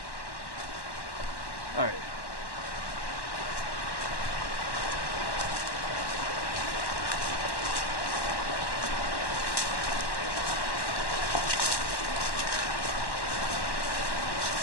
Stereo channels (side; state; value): right; late; 1.1 ms